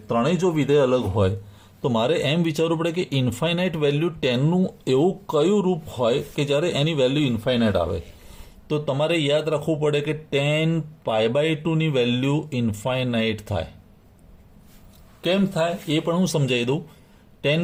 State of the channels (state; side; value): identical; both; correlation 1.00